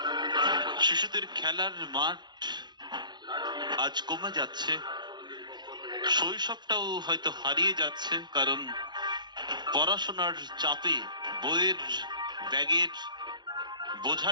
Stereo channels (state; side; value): late; left; 0.21 ms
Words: শিশুদের খেলার মাঠ আজ কমে যাচ্ছে, শৈশবটাও হয়তো হারিয়ে যাচ্ছে, কারণ পড়াশোনার চাপে বইয়ের ব্যাগের বোঝা